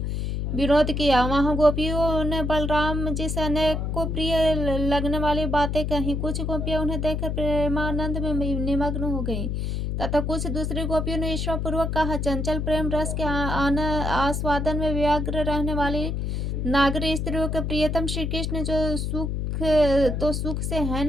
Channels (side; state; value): left; noise; hum, 1 dB below the sound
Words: विनोद किया। वहां गोपियों ने बलराम जी से अनेकों प्रिय लगने वाली बातें कही। कुछ गोपियां उन्हें देखकर प्रेमानंद में निमग्न हो गईं तथा कुछ दूसरी गोपियों ने ईर्ष्या पूर्वक कहा, चंचल प्रेम रस के आस्वादन में व्यग्र रहने वाली नागरी स्त्रियों के प्रियतम श्री कृष्ण जो सुख तो सुख से है